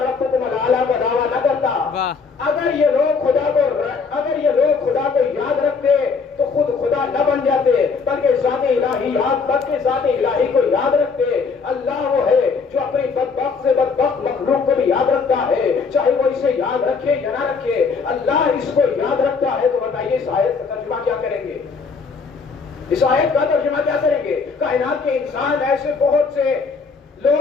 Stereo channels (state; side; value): quieter; right; 5.0 dB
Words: الاعلی کا دعویٰ نہ کرتا۔ اگر یہ لوگ خدا کو یاد رکھتے تو خود خدا نہ بن جاتے، بلکہ ذات الہی کو یاد رکھتے۔ اللہ وہ ہے جو اپنی بدبخت سے بدبخت مخلوق کو بھی یاد رکھتا ہے، چاہے وہ اسے یاد رکھے یا نہ رکھے، اللہ اس کو یاد رکھتا ہے۔ تو بتائیے اس آیت کا ترجمہ کیا کریں گے؟ اس آیت کا ترجمہ کیا کریں گے؟ کائنات کے انسان ایسے بہت سے